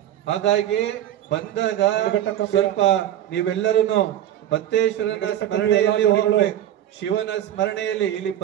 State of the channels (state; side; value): quieter; left; 11.6 dB